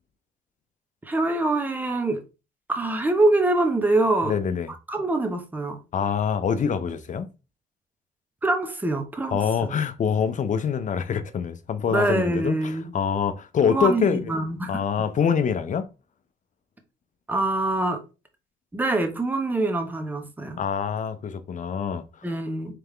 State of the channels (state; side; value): normal; both; correlation 0.59